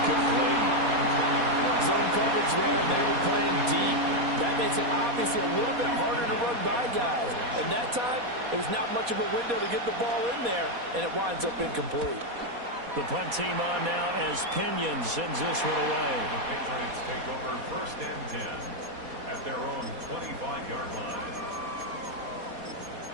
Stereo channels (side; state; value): left; late; 4.2 ms